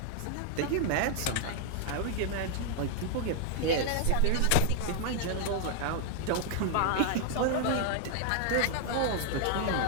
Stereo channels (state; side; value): different; both; correlation 0.00